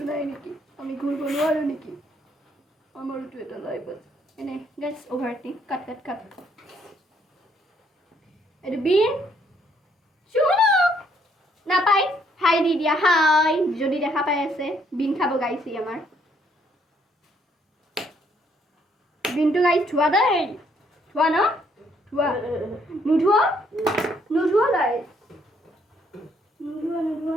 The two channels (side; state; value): both; normal; correlation 0.69